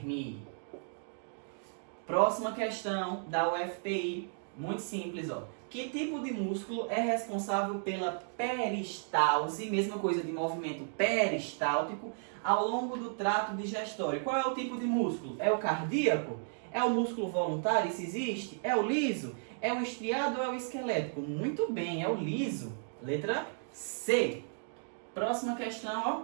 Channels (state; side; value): silent; left; digital silence